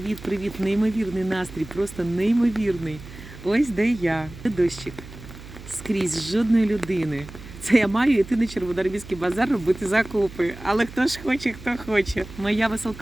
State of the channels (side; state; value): right; noise; hum, 16 dB below the sound